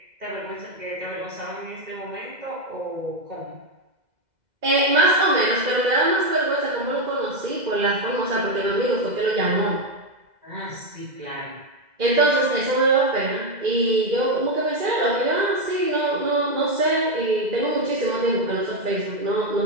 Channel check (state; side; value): late; left; 2.0 ms